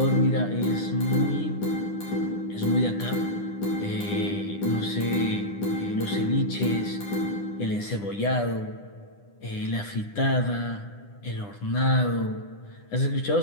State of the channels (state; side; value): late; right; 9.9 ms